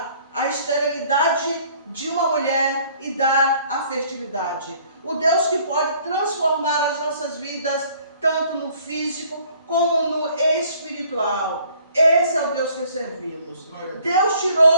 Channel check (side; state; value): both; inverted; correlation -0.58